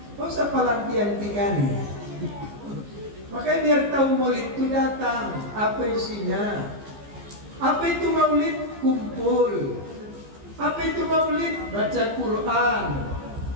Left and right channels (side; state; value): left; late; 15 ms